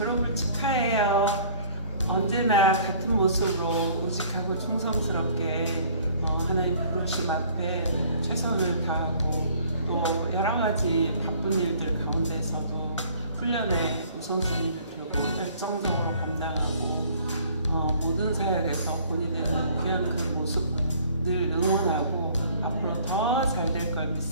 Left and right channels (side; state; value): both; inverted; correlation -0.54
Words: 축하해요. 언제나 같은 모습으로 우직하고 충성스럽게 하나님 부르심 앞에 최선을 다하고 또 여러 가지 바쁜 일들 가운데서도 훈련에 우선순위를 두고 열정적으로 감당하고 모든 사역에서 본이 되는 귀한 그 모습 늘 응원하고 앞으로 더 잘 될 걸